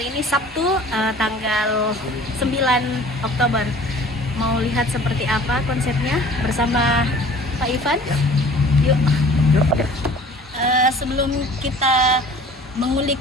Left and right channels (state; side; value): normal; both; correlation 0.48